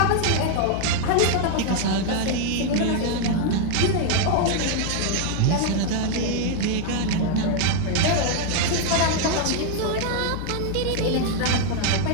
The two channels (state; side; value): different; both; correlation 0.00